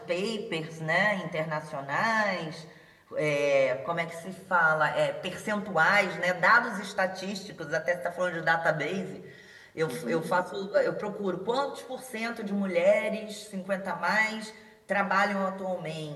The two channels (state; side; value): identical; both; correlation 1.00